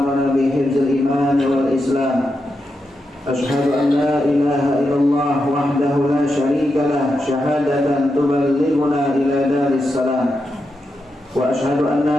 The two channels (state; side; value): normal; both; correlation 0.87